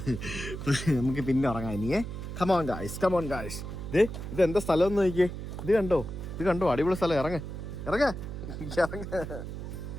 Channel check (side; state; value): right; noise; hum, 8 dB below the sound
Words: നമുക്ക് പിന്നെ ഉറങ്ങാം ഇനിയേ. Come on guys. ഇത് എന്താ സ്ഥലം എന്ന് നോക്കിയേ. ഇത് കണ്ടോ, അടിപൊളി സ്ഥലം. ഇറങ്ങ